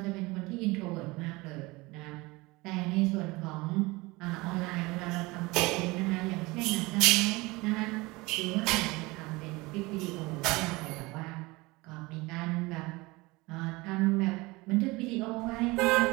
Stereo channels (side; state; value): left; quieter; 22.9 dB